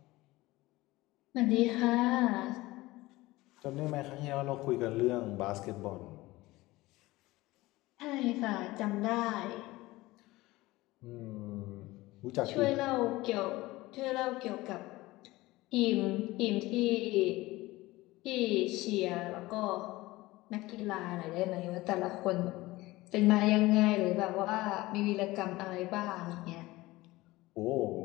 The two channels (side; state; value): right; quieter; 19.4 dB